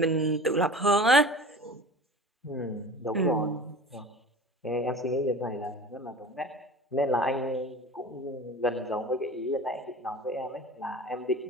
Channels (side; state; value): both; normal; correlation 0.38